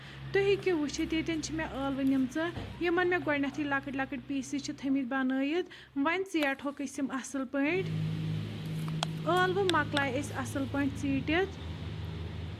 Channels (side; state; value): both; identical; correlation 1.00